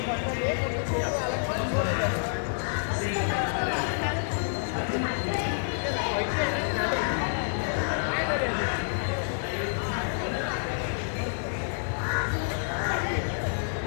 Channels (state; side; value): silent; right; digital silence